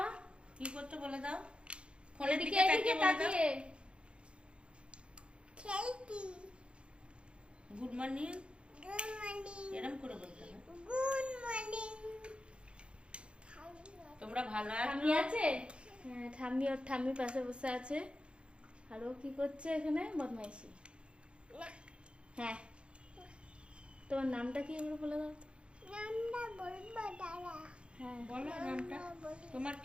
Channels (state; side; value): late; left; 0.057 ms